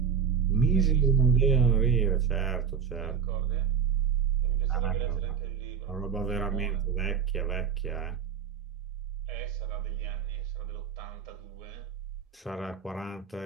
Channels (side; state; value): left; quieter; 7.2 dB